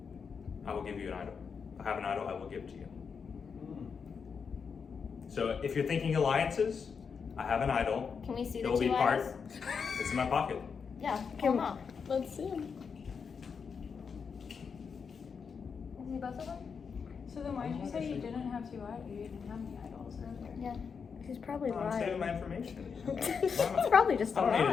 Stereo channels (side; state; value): right; quieter; 6.0 dB